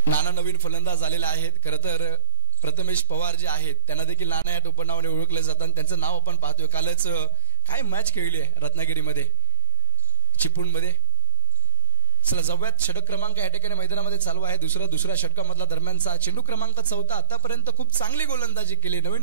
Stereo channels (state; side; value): inverted; both; correlation -0.54